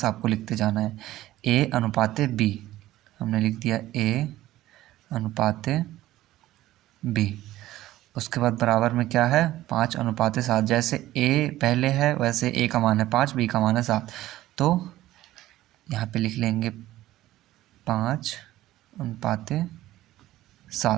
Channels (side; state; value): left; quieter; 15.2 dB